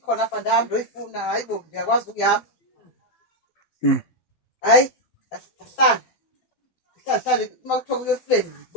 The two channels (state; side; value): late; right; 12 ms